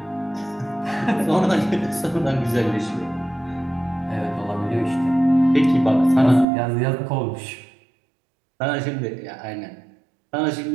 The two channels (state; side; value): drops out; left; at 6.5 s